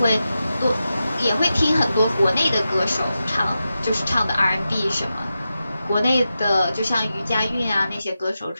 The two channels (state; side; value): inverted; both; correlation -0.91